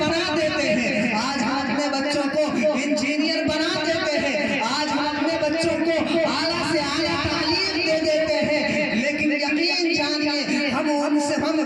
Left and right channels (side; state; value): both; identical; correlation 1.00